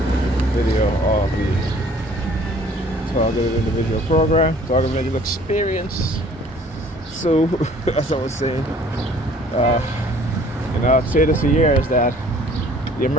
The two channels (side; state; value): both; normal; correlation 0.54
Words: video of the Targeted Individual Program, Targeted Individual Experience. So, as I was saying, I've said this for years that the